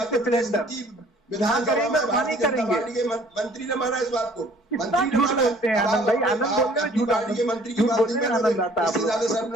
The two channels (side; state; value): both; normal; correlation 0.55